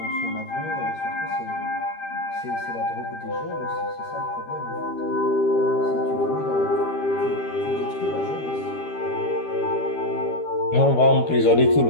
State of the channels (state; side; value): late; right; 13 ms